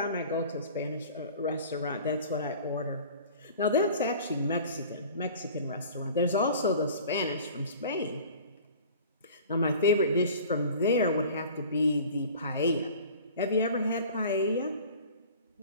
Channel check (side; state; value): both; inverted; correlation -0.44